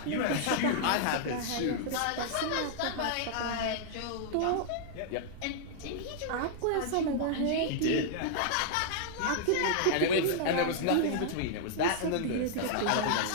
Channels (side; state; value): both; different; correlation -0.01